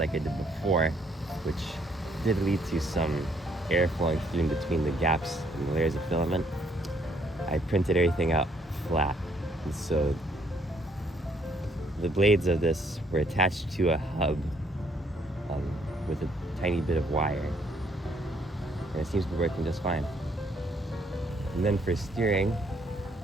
I did before, which did lead to some air flowing through in between the gaps in the layers of filament, I printed everything out flat. And so the blades of this were attached to a hub with a tiny bit of wire. And it seems to be working just fine. And then for steering,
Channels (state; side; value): normal; both; correlation 0.68